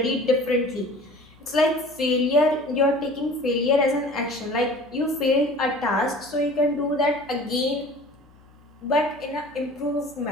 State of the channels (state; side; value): noise; left; hum, 27 dB below the sound